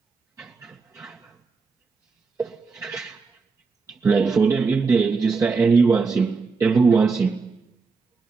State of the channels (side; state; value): left; quieter; 4.7 dB